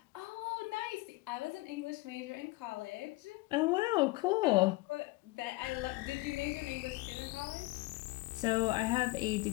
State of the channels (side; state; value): right; quieter; 22.5 dB